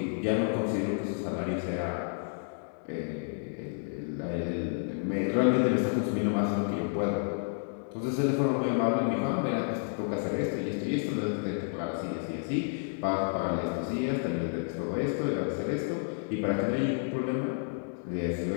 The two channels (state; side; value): silent; right; 57 dB below the other